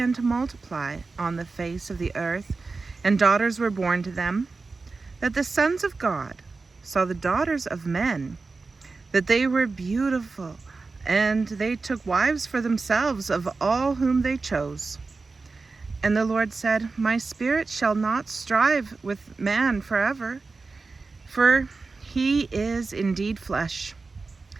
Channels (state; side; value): quieter; left; 4.0 dB